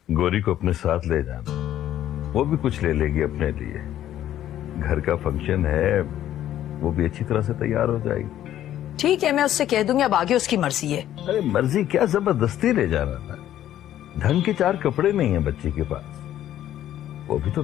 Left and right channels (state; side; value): quieter; right; 12.0 dB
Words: गौरी को अपने साथ ले जाना, वो भी कुछ ले लेगी अपने लिए। घर का फंक्शन है, वो भी अच्छी तरह से तैयार हो जाएगी। ठीक है, मैं उससे कह दूंगी, अब आगे उसकी मर्जी है। अरे मर्जी क्या, जबरदस्ती ले जाना था। ढंग के 4 कपड़े नहीं है बच्चे के पास, वो भी तो